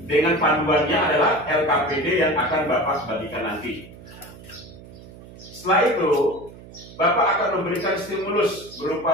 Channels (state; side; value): noise; right; hum, 18 dB below the sound